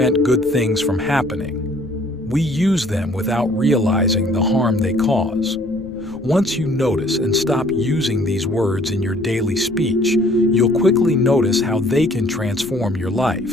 good things from happening. We use them without realizing the harm they cause. Once you notice and stop using these words in your daily speech, you'll quickly notice how they can transform your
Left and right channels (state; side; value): noise; left; rumble, 20 dB below the sound